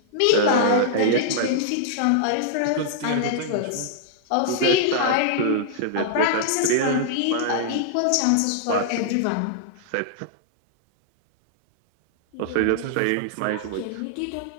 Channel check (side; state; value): both; different; correlation -0.01